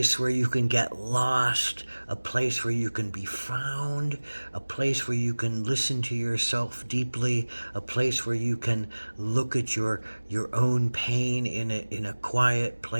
where you can get lost, a place where you can be found, a place where you can listen to yourself deeply, a place where you can look at your own pain in a quiet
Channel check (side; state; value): both; inverted; correlation -1.00